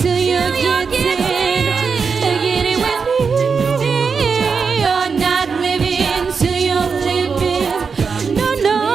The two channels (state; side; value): quieter; left; 5.5 dB